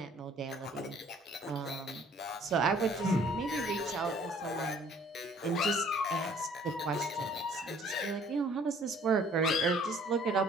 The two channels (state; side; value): normal; both; correlation 0.56